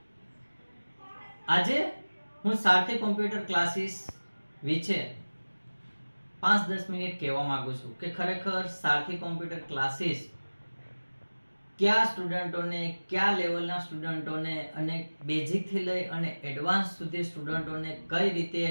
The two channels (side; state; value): both; inverted; correlation -1.00